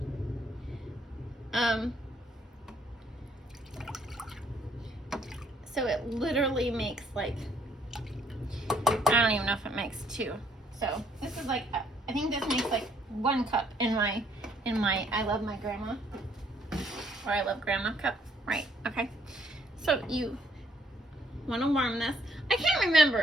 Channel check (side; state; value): both; normal; correlation 0.67